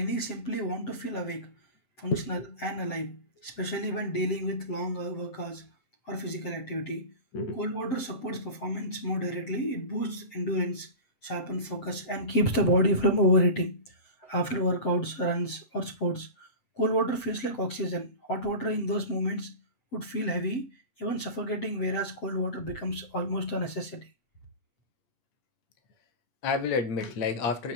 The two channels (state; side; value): late; right; 7.8 ms